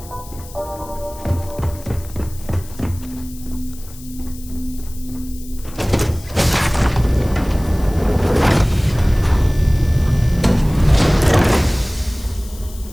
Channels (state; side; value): noise; left; hiss, 19 dB below the sound